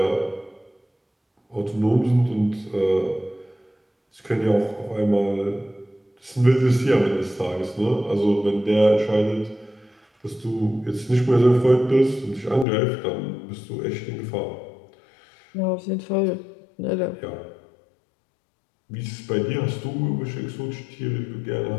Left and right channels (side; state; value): right; drops out; at 12.7 s